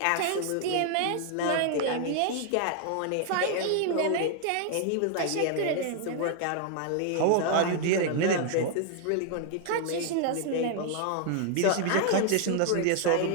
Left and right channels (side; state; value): both; different; correlation 0.00